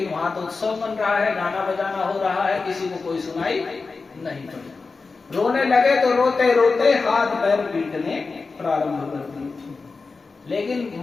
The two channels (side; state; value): right; quieter; 4.2 dB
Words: वहां तो उत्सव बन रहा है, गाना बजाना हो रहा है, किसी को कोई सुनाई नहीं पड़ी। रोने लगे तो रोते रोते हाथ पैर पीटने प्रारंभ कर दिए। लेकिन